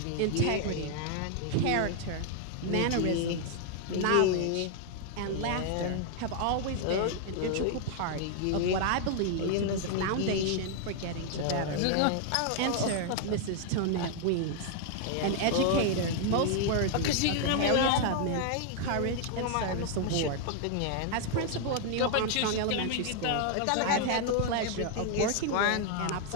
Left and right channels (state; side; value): different; both; correlation 0.00